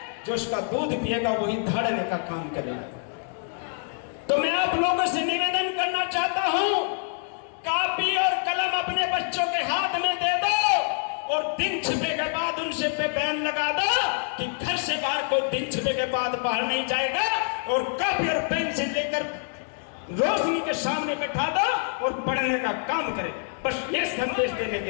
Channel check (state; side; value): silent; right; 59 dB below the other